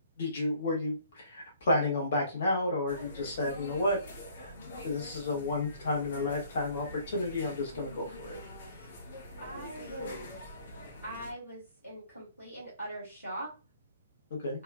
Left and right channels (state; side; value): inverted; both; correlation -0.58